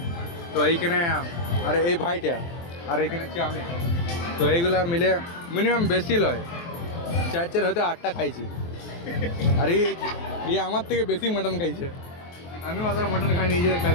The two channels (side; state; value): right; late; 23 ms